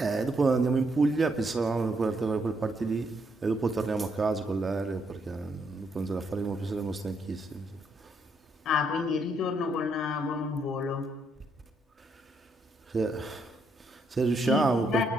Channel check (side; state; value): both; normal; correlation 0.75